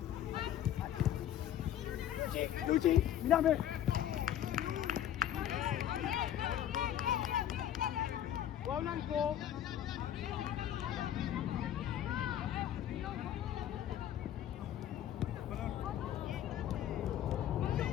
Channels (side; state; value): right; quieter; 11.1 dB